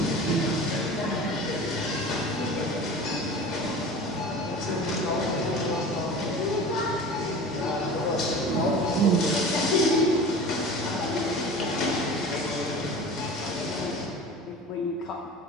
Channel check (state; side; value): normal; both; correlation 0.37